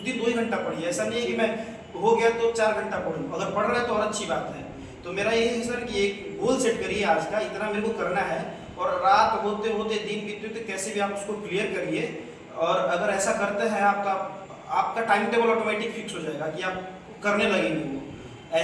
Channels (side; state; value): both; identical; correlation 1.00